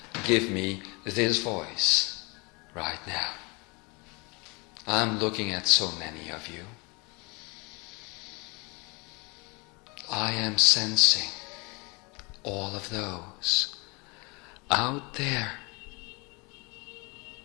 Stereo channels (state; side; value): quieter; right; 28.8 dB